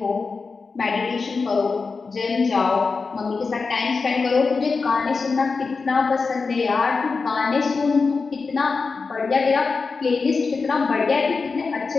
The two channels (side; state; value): right; quieter; 4.5 dB